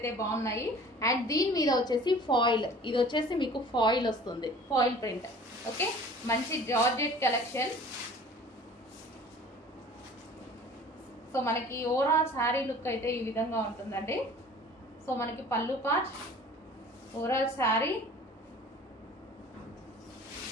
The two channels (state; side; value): normal; both; correlation 0.46